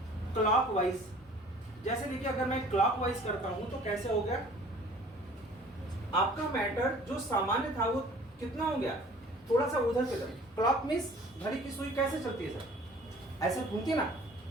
क्लॉकवाइज, जैसे देखिए अगर मैं क्लॉकवाइज करता हूं तो कैसे हो गया, आपका मैटर जो सामान्य था वो कितना हो गया, थोड़ा सा उधर की तरफ। क्लॉक मींस घड़ी की सुई कैसे चलती है सर, ऐसे घूमती है ना,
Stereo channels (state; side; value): normal; both; correlation 0.50